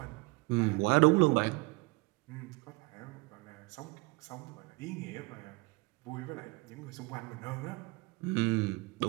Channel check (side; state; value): left; quieter; 25.6 dB